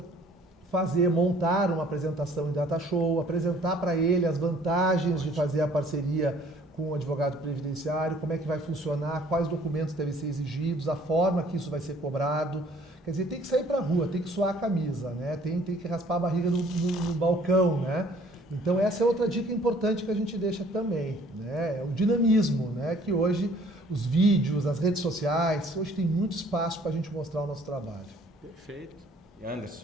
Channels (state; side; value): normal; both; correlation 0.57